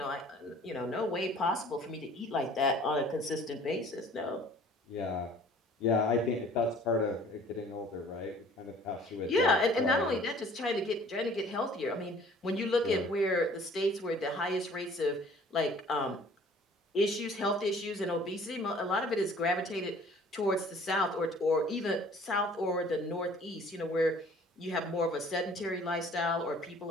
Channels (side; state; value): both; normal; correlation 0.52